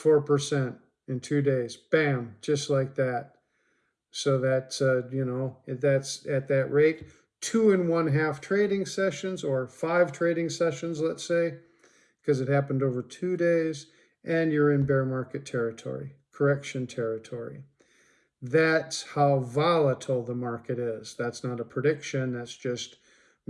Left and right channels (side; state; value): both; identical; correlation 1.00